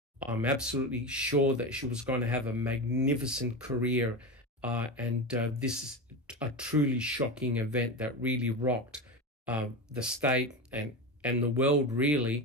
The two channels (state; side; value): normal; both; correlation 0.21